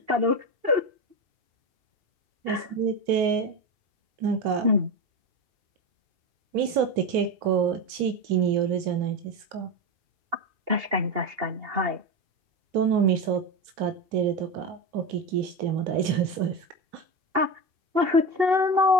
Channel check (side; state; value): left; late; 3.0 ms